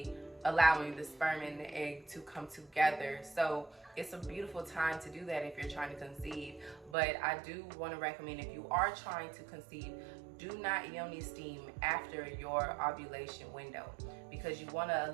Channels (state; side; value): drops out; left; at 7.0 s